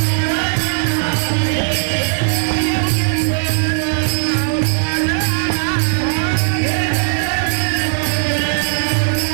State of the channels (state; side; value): silent; left; 61 dB below the other